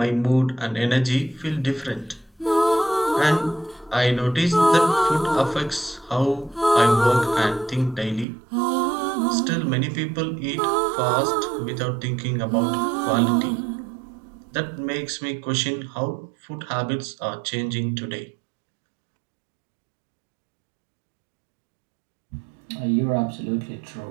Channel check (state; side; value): drops out; left; at 8.2 s